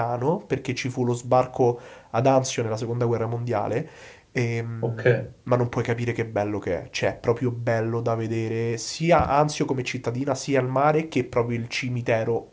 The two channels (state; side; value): identical; both; correlation 1.00